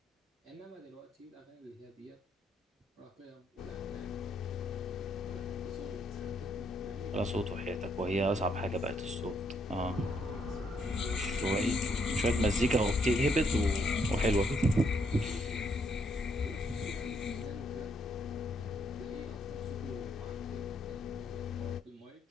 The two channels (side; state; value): both; normal; correlation 0.73